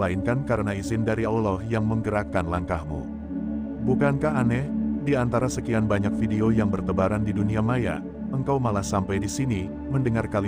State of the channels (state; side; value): identical; both; correlation 1.00